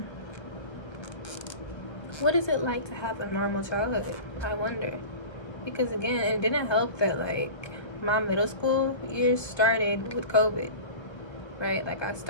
What is it like to have a normal childhood? I wonder. Because again, it didn't help that like my middle school years started with COVID, right? Like, I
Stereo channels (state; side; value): late; right; 1.3 ms